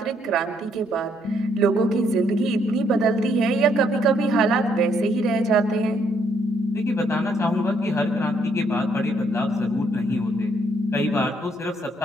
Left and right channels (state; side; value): normal; both; correlation 0.71